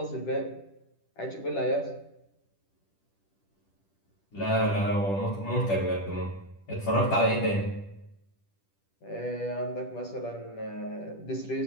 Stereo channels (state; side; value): late; right; 10 ms